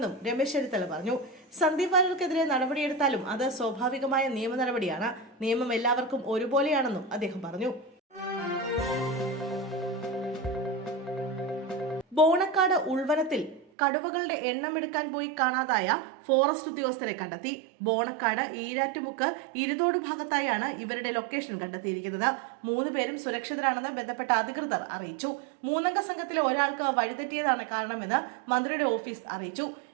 രമേശ് ചെന്നിത്തല പറഞ്ഞു. സന്ദീപ് വാര്യർക്കെതിരെ നടപടിയെടുത്താലും അത് സ്വാഭാവികമായ നിയമ നടപടിയാണ്. നിയമം എല്ലാവർക്കും ഒരുപോലെയാണെന്നും അദ്ദേഹം പറഞ്ഞു. ബോണക്കാട് ഉൾവനത്തിൽ കടുവകളുടെ എണ്ണമെടുക്കാൻ പോയി കാണാതായ ഫോറസ്റ്റ് ഉദ്യോഗസ്ഥരെ കണ്ടെത്തി. ബോണക്കാട് ഈരാറ്റുമുക്ക് ഇരുതോട് ഭാഗത്തായാണ് ഇവരുടെ ലൊക്കേഷൻ കണ്ടെത്തിയിരിക്കുന്നത്. 3 പേരും സുരക്ഷിതരാണെന്ന് ബന്ധപ്പെട്ട അധികൃതർ അറിയിച്ചു. 3 അംഗ സംഘത്തിലെ ഒരാൾക്ക് വഴിതെറ്റിയതാണ് കാരണമെന്ന് മന്ത്രിയുടെ ഓഫീസ് അറിയിച്ചു.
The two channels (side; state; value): left; drops out; at 13.7 s